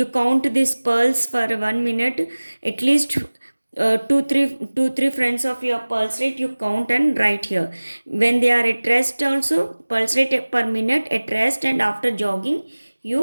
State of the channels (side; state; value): both; inverted; correlation -1.00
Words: count this pulse for 1 minute. At least two three friends of your pulse rate you count and write here. When they are at rest also, pulse rate per minute at rest and after jogging,